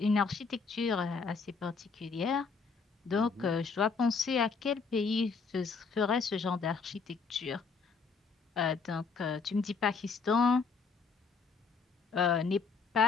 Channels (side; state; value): right; quieter; 5.0 dB